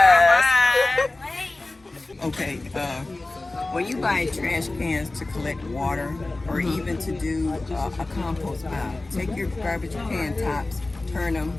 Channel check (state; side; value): quieter; right; 3.0 dB